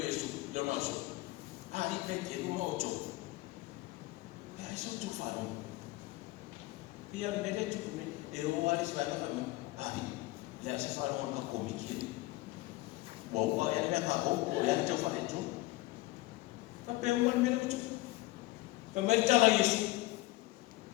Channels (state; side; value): quieter; right; 19.5 dB